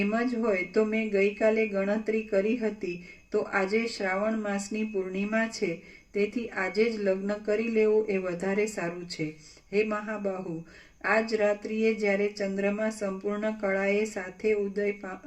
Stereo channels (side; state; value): both; identical; correlation 1.00